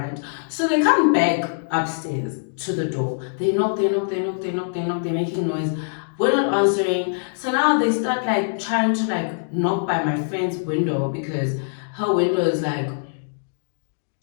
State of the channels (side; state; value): right; silent; digital silence